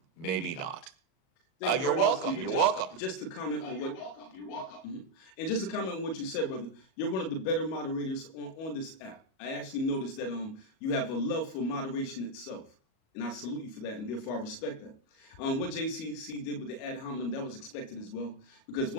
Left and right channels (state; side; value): late; right; 37 ms